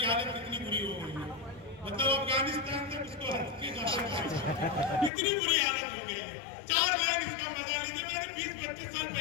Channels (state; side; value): drops out; right; at 5.1 s